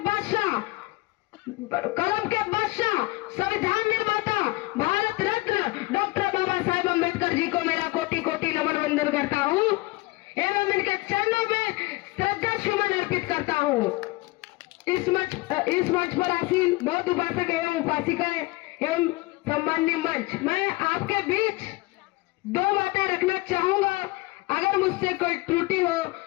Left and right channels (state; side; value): quieter; right; 22.2 dB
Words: के बादशाह संविधान निर्माता भारत रत्न डॉक्टर बाबा साहेब अम्बेडकर जी को मेरा कोटि कोटि नमन वंदन करता हूँ एवं इनके चरणों में श्रद्धा सुमन अर्पित करता हूँ। इस मंच पर आसीन बहुत उपासक एवं उपासिकाएं एवं सम्माननीय मंच, मैं आपके बीच दो बातें रखना चाहूंगा। अगर मुझसे कोई त्रुटि हो